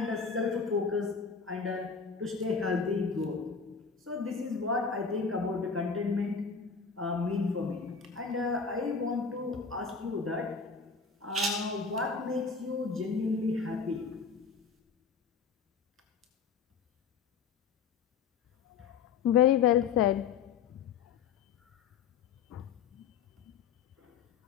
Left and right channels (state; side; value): quieter; right; 5.8 dB